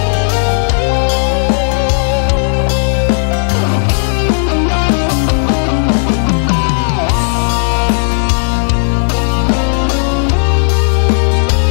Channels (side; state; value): right; silent; digital silence